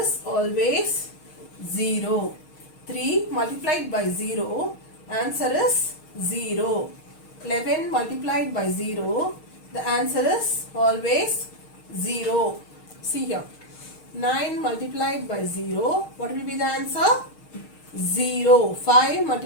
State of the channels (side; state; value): right; late; 6.5 ms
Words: always 0. 3 multiplied by 0, answer is 0. 11 multiplied by 0, the answer is always 0. See here. 9 multiplied by 0, what will be the answer? 0. 5